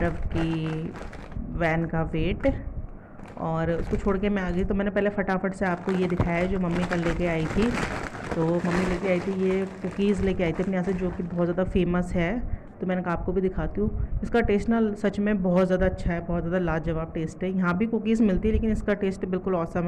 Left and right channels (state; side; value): identical; both; correlation 1.00